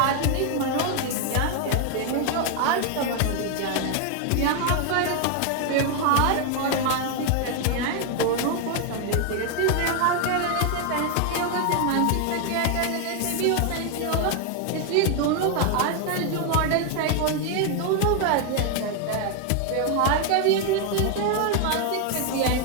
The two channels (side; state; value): both; different; correlation 0.00